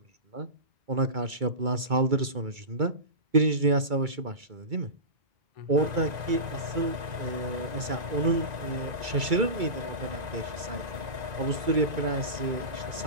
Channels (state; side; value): late; left; 2.3 ms